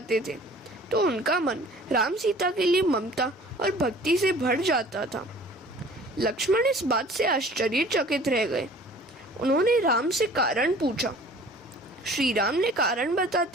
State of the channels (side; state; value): both; normal; correlation 0.48